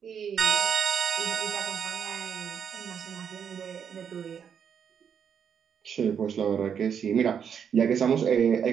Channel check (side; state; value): left; quieter; 7.6 dB